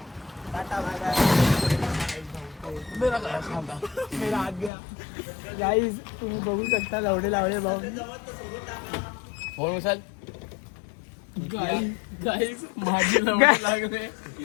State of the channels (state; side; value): drops out; right; at 4.7 s